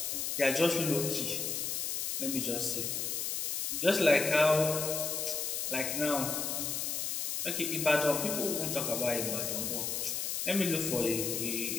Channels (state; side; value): noise; left; hiss, 1 dB below the sound